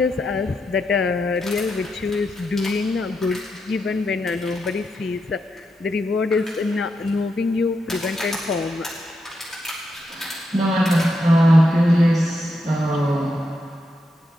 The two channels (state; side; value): normal; both; correlation 0.84